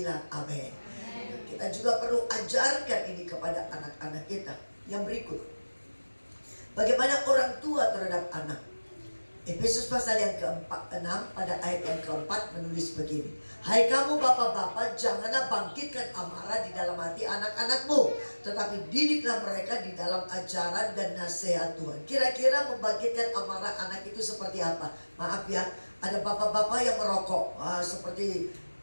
amin. kita juga perlu ajarkan ini kepada anak-anak kita. Yang berikut, bagaimana orang tua terhadap anak. Efesus pasal yang ke-6 pada ayat yang keempat menulis begini. Hai kamu bapak-bapak, janganlah bangkitkan amarah di dalam hati anak-anakmu, tetapi didiklah mereka di dalam ajaran dan nasihat Tuhan. Kira-kira membangkitkan amarah anak itu seperti apa? Maaf ya, ada bapak-bapak yang merokok. Seperti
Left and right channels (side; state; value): both; inverted; correlation -1.00